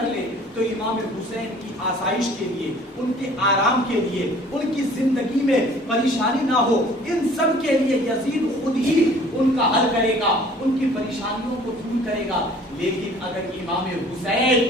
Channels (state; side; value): normal; both; correlation 0.52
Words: لے, تو امام حسین کی آسائش کے لیے, ان کے آرام کے لیے, ان کی زندگی میں پریشانی نہ ہو, ان سب کے لیے یزید خود ہی ان کا حل کرے گا, ان کی پریشانیوں کو دور کرے گا. لیکن اگر امام